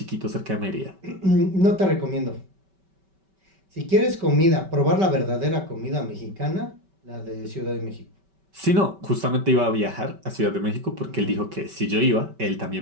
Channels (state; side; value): late; left; 5.2 ms